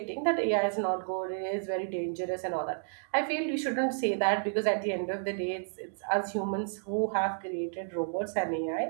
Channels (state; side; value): silent; left; digital silence